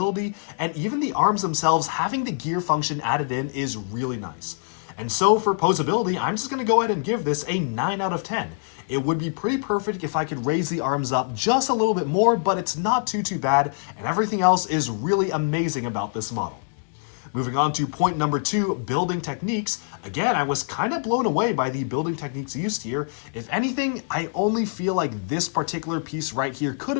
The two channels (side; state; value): right; silent; digital silence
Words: and even the arms themselves having the gear function added in is really nice. And so for posability, I'm just going to go ahead and give this a 9 out of 10. It would be pretty perfect if I could raise the arms up just a little bit more, but it's not too bad, and everything else is really amazing about this model. Moving on to point number 2, building techniques. Again, I was kind of blown away by the building techniques used here. If anything, I only feel like this particular piece right here could